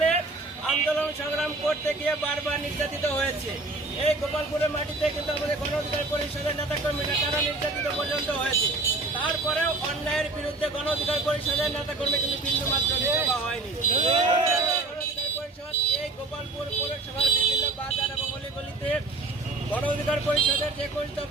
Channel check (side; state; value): left; quieter; 3.3 dB